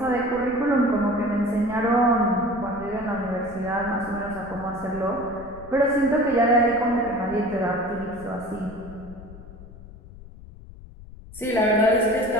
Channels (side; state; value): left; noise; rumble, 17 dB below the sound